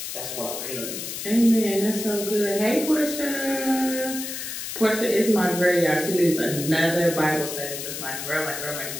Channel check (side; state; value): left; noise; hiss, 6 dB below the sound